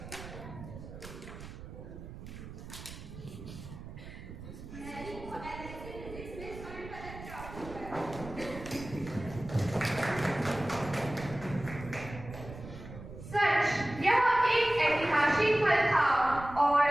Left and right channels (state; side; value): noise; right; rumble, 13 dB below the sound